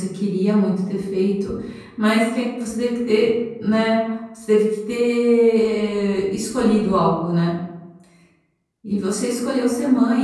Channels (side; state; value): both; identical; correlation 1.00